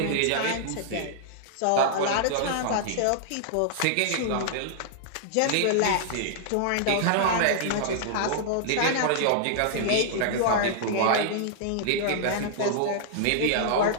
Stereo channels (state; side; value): different; both; correlation -0.01